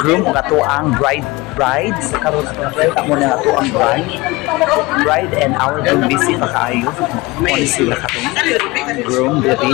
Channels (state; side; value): quieter; right; 22.2 dB